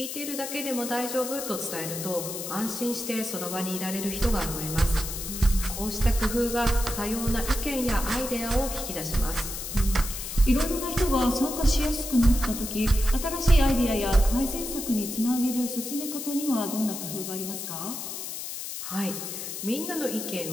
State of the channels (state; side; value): noise; left; hiss, 7 dB below the sound